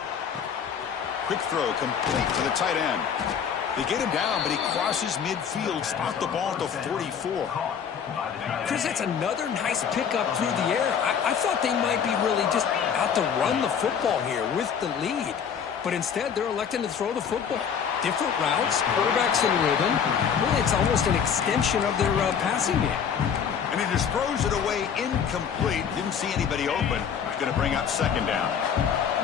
Quick throw complete to the tight end. They get him down, but he crosses midfield, spot the ball at the 44. Chris, that's another nice pickup through the air. I thought they might be really just out to run the football here with the lead. But instead, they're electing to throw the football. Different routes, quarterbacks in rhythm. Really, it's almost an extension of their passing game. And he just throws it away incomplete. Didn't see anybody open. He's going to bring up 2nd down.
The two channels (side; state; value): right; quieter; 7.5 dB